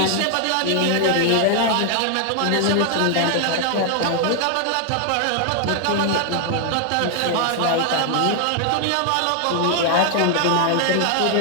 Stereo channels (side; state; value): both; different; correlation 0.00